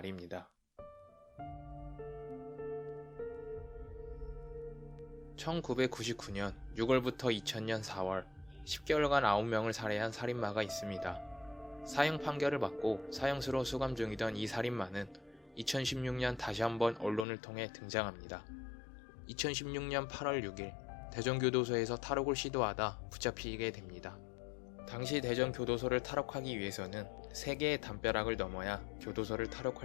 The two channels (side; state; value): right; drops out; at 17.2 s